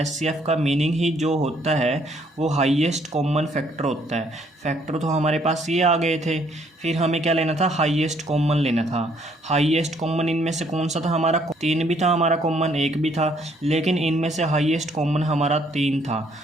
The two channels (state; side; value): normal; both; correlation 0.66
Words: का मीनिंग ही जो होता है वो हाईएस्ट कॉमन फैक्टर होता है। फैक्टर तो हमारे पास ये आ गए थे, फिर हमें क्या लेना था, हाईएस्ट कॉमन लेना था। हाईएस्ट कॉमन इनमें से कौन सा था हमारा, 3 भी था हमारा कॉमन, 1 भी था, लेकिन इनमें से हाईएस्ट कॉमन हमारा 3 था,